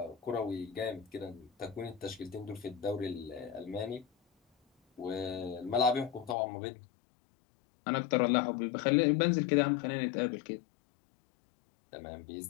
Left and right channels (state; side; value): drops out; right; at 6.4 s